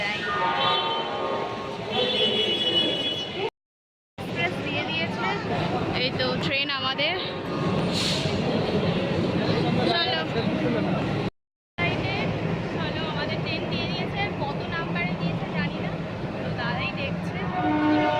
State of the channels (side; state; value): both; identical; correlation 1.00